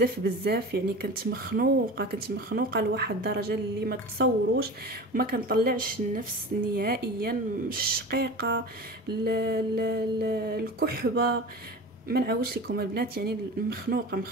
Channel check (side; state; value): both; normal; correlation 0.33